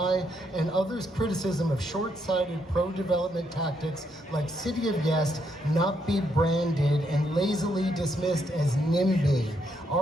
and others' criticism of short-sighted pro-development tactics like City of Yes not be branded and lazily dismissed as NIMBY.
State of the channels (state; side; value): normal; both; correlation 0.76